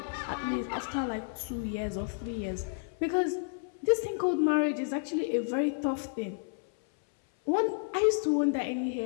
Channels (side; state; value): right; silent; 57 dB below the other